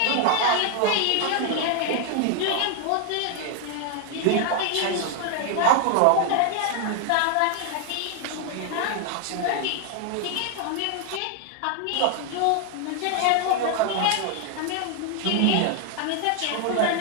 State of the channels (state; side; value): different; both; correlation 0.00